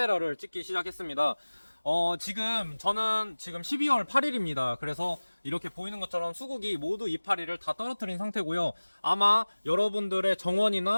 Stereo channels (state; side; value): inverted; both; correlation -1.00